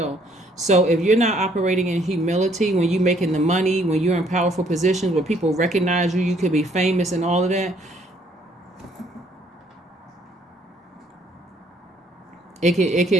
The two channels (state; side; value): normal; both; correlation 0.65